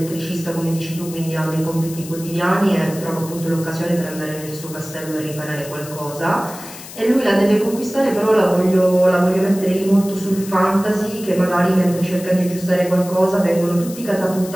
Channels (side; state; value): left; noise; hiss, 14 dB below the sound